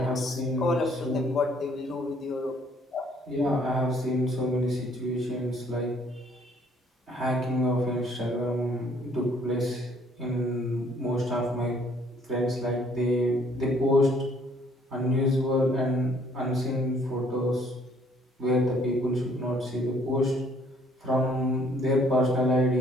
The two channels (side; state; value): both; normal; correlation 0.62